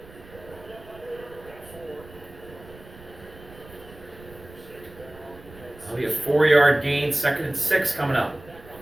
That'll be a 4-yard gain, 2nd and 6 coming up.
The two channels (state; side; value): noise; right; rumble, 20 dB below the sound